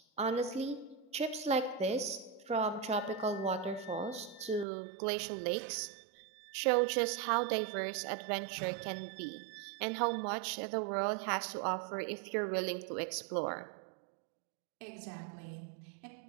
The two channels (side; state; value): left; drops out; at 4.7 s